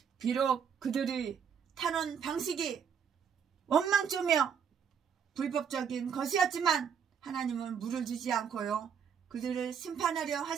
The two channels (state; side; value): quieter; left; 7.3 dB